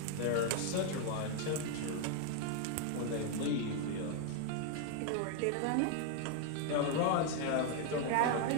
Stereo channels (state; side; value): different; both; correlation 0.00